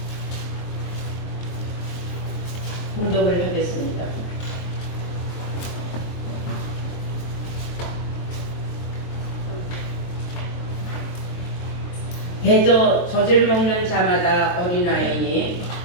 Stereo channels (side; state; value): right; late; 23 ms